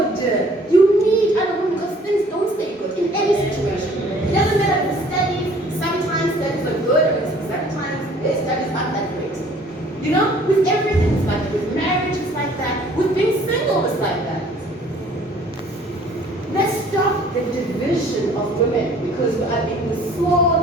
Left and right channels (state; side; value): normal; both; correlation 0.55